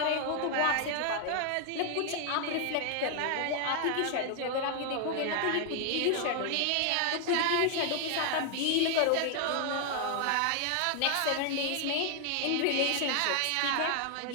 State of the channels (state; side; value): different; both; correlation 0.00